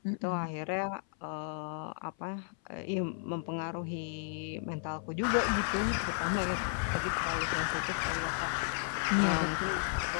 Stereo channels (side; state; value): right; silent; 55 dB below the other